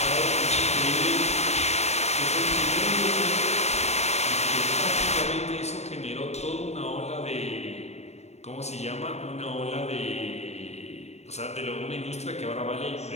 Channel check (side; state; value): right; late; 0.32 ms